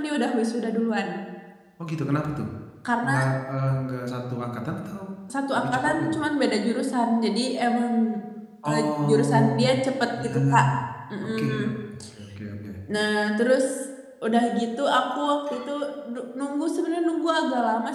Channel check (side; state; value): both; identical; correlation 1.00